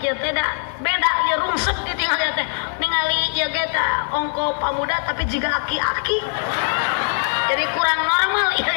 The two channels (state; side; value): silent; right; 61 dB below the other